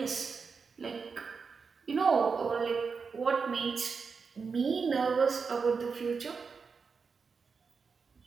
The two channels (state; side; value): quieter; left; 5.2 dB